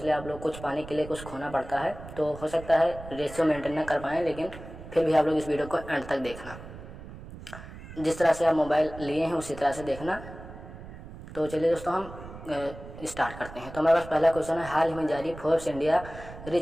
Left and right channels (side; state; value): right; noise; rumble, 14 dB below the sound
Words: आप लोग कुछ पाने के लिए कुछ खोना पड़ता है, तो हो सकता है रेशियो मेंटेन ना कर पाएँ, लेकिन फिर भी आप लोग इस वीडियो को एंड तक देखना। जिस तरह से आप मोबाइल लिए हैं उसी तरह से देखना। तो चलिए दोस्तों, हम स्टार्ट करते हैं। तो हमारे पास पहला क्वेश्चन है, हाल ही में जारी फोर्ब्स इंडिया